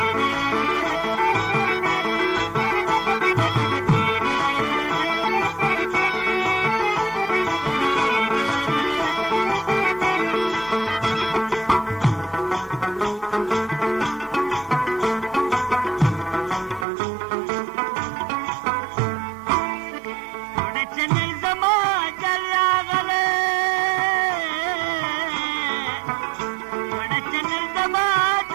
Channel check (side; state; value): left; drops out; at 16.9 s